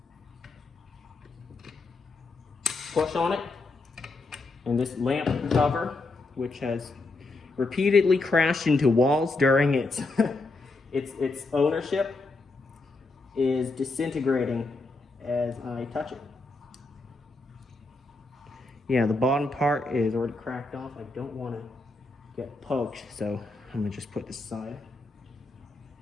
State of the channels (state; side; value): quieter; right; 3.4 dB